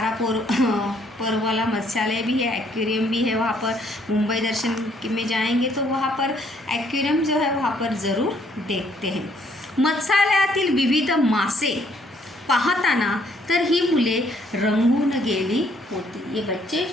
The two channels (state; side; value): normal; both; correlation 0.66